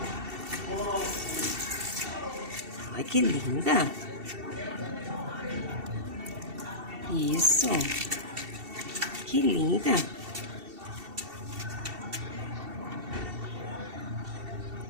Ai, que linda. Isso. Que linda.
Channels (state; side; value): late; left; 2.7 ms